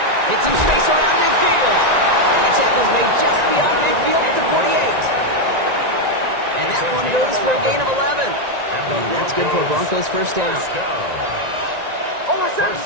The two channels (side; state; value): left; late; 1.9 ms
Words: Get some space around midfield. And the tackle's made just beyond midfield at the 48. And that one goes for a gain of 11. And that's good for Broncos 1st down. First